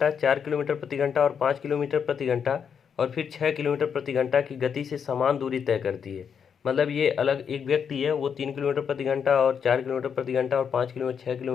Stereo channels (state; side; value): quieter; right; 7.2 dB